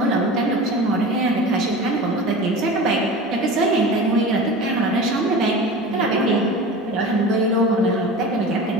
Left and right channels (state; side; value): normal; both; correlation 0.33